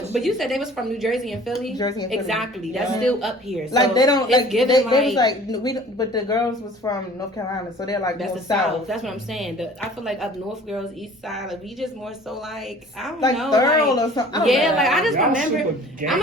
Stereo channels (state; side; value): normal; both; correlation 0.48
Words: me. but you said they was from New Jersey and Philly. Jersey and Philly. Exactly. That's Yeah. still up here. So Like they don't it's like given they was like we don't, but the girls was from North Carolina, so they're like that's more the South. south. That's what I'm saying. I feel like up north girls, east side, like we just more so like I don't Like know, thorough like, or something. I don't yeah, know. like I just Y'all remember. super gang I'm